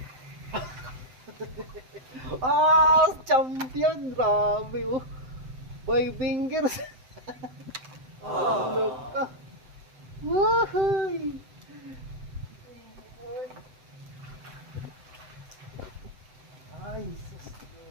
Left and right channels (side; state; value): left; late; 7.8 ms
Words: Champion. Grabe oh. 5 fingers. Laka. Wahay. Ay, sus.